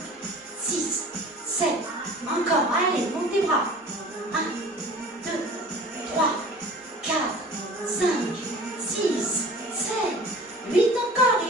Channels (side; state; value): both; normal; correlation 0.43